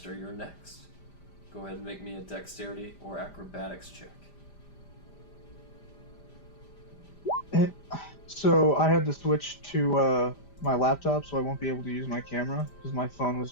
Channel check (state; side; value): late; right; 5.0 ms